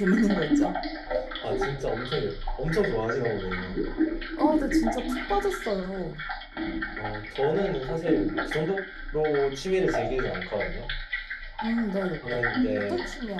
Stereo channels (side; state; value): both; identical; correlation 1.00